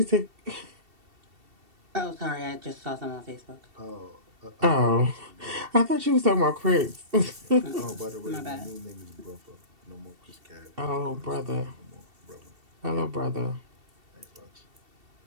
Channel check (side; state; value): left; late; 2.7 ms